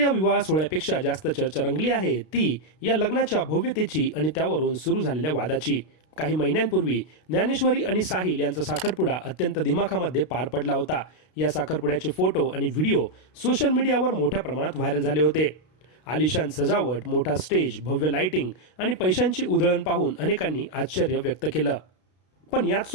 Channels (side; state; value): right; late; 32 ms